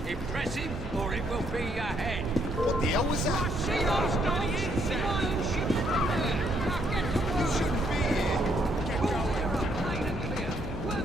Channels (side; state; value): both; normal; correlation 0.71